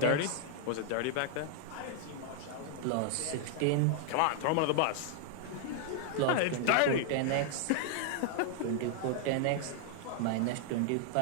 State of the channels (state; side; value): different; both; correlation 0.00